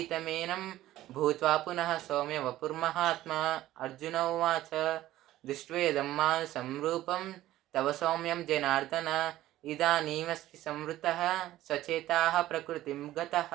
भूत्वा पुनः सौम्य वपुर्महात्मा अर्जुन उवाच दृष्ट्वेदं मानुषं रूपं तव सौम्यं जनार्दन इदानीमस्मि संवृतः सचेताः प्रकृतिं गतः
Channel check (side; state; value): left; quieter; 14.8 dB